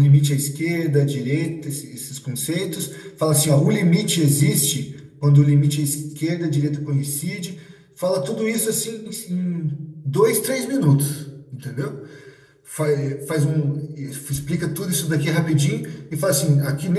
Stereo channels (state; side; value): identical; both; correlation 1.00